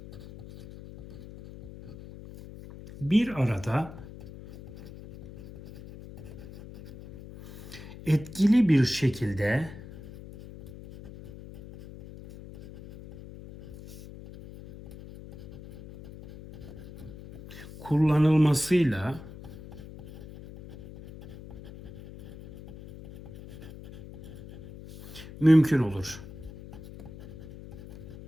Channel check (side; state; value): left; noise; hum, 16 dB below the sound